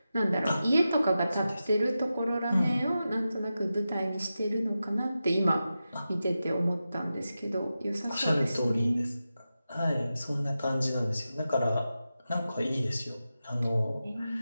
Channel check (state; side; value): inverted; both; correlation -0.92